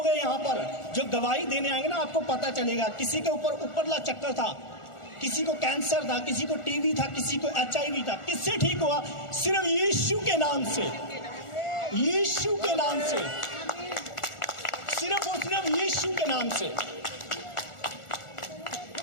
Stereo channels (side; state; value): right; late; 1.4 ms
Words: हैं यहाँ पर जो गवाही देने आएंगे ना, आपको पता चलेगा। किसी के ऊपर उपरला चक्कर था, किसी को कैंसर था, किसी को टीबी था, किसी को HIV था, किससे ठीक हुआ? सिर्फ यीशु के नाम से, यीशु के नाम से, सिर्फ और सिर्फ यीशु के नाम से,